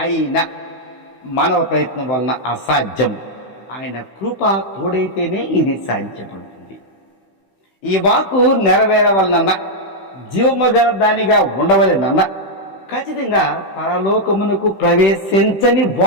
అయినా మానవ ప్రయత్నం వలన అసాధ్యం. ఆయన కృప తోడైతేనే ఇది సాధ్యపడుతుంది. ఈ వాక్కు నెరవేరవలనన్నా, జీవము గల దానిగా ఉండవలెనన్నా ఖచ్చితంగా పరలోకమునకు ప్రవేశించని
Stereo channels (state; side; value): late; right; 16 ms